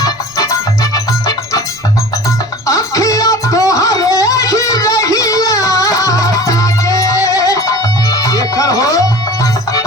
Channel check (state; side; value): noise; right; rumble, 27 dB below the sound